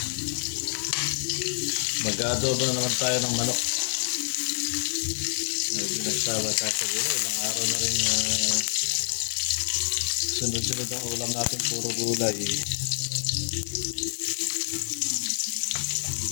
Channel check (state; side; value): silent; right; digital silence